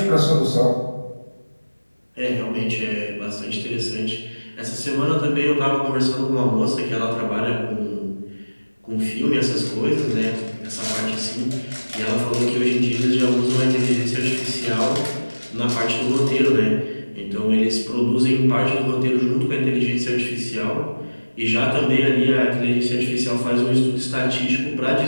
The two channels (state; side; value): inverted; both; correlation -1.00